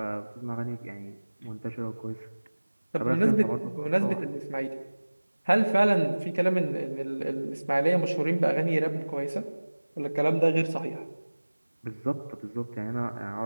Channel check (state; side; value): inverted; both; correlation -1.00